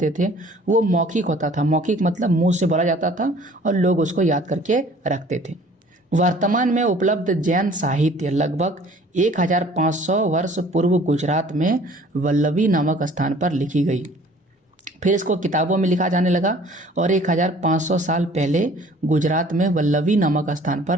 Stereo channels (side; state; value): both; normal; correlation 0.52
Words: थे वो मौखिक होता था। मौखिक मतलब मुंह से बोला जाता था और लोग उसको याद करके रखते थे। वर्तमान में उपलब्ध जैन साहित्य लगभग 1500 वर्ष पूर्व गुजरात में वल्लभी नामक स्थान पर लिखी गई, फिर इसको किताबों में लिखा जाने लगा और 1500 साल पहले गुजरात में वल्लभी नामक स्थान